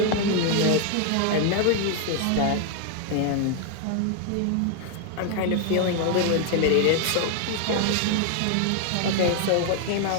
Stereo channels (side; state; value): both; different; correlation 0.00